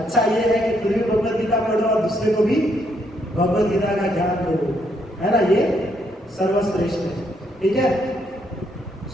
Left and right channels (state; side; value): normal; both; correlation 0.74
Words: ये है कि खुद भी भगवत गीता पढ़ो और दूसरे को भी भगवत गीता का ज्ञान दो, है ना, ये सर्वश्रेष्ठ है, ठीक है।